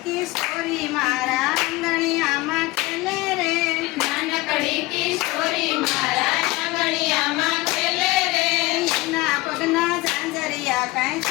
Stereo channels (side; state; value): right; quieter; 20.3 dB